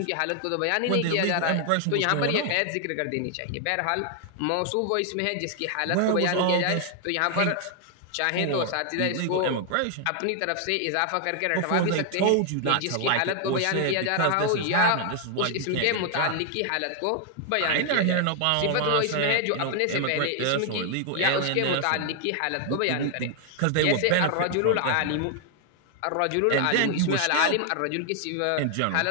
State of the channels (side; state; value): both; different; correlation 0.00